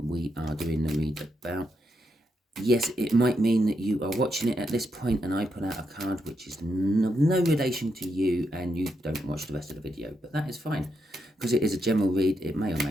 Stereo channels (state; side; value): normal; both; correlation 0.82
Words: we are doing the read about. Yes, it might mean that you are watching it at this point and I put out a card which is no relation to you and you don't watch the rest of the video, but that is fine because it is a general read. It may or